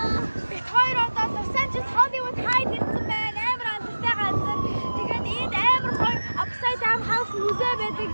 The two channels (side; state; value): both; inverted; correlation -1.00